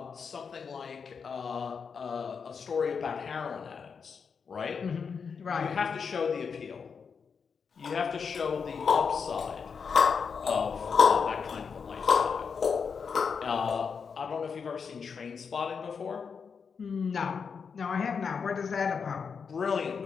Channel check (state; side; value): quieter; right; 6.0 dB